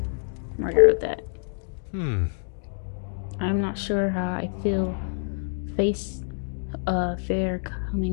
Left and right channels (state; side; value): silent; right; digital silence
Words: Margaret wrote that. I'm not sure how I feel fair